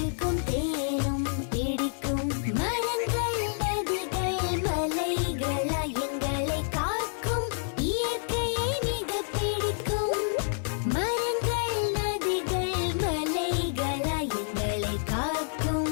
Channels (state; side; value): silent; right; 59 dB below the other